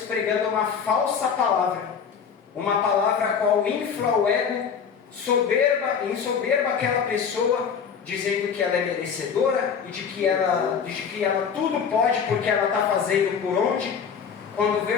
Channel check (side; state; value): right; quieter; 6.8 dB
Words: uma falsa palavra. Uma palavra a qual infla o ego, ensoberba aquela pessoa, dizendo que ela é merecedora e de que ela tudo pode porque ela está fazendo por onde, quando